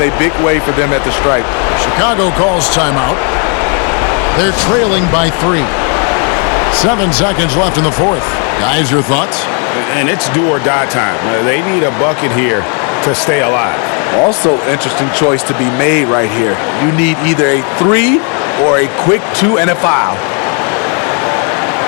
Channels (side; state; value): right; quieter; 39.7 dB